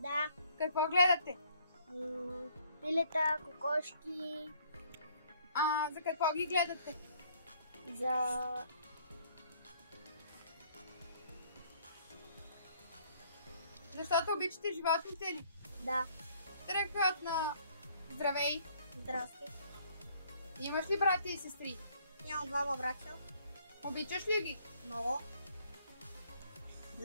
Какво гледате? Пилета, кокошки. За какво ги гледате? Защото обичате животните ли? Да. Страхотно! Здравей! Здрасти. Имаш ли брати и сестри? Имам двама братя. Обичаш ли ги? Много.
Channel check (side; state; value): both; inverted; correlation -0.62